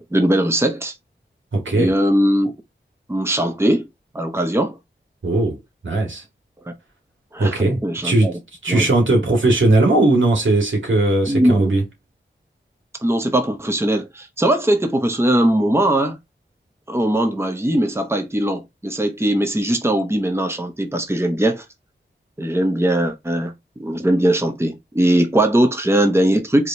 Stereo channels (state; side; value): normal; both; correlation 0.77